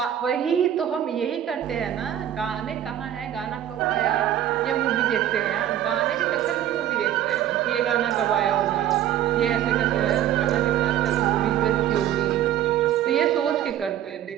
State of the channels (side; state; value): left; quieter; 11.3 dB